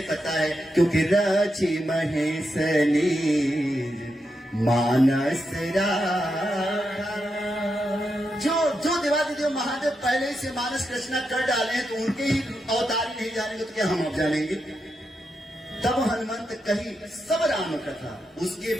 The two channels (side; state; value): both; normal; correlation 0.85